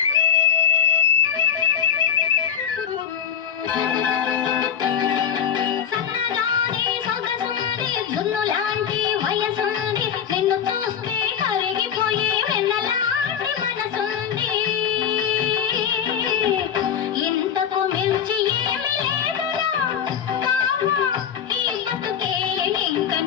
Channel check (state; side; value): quieter; right; 8.2 dB